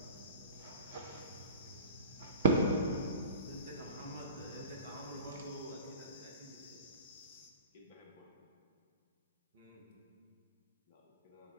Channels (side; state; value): both; inverted; correlation -0.37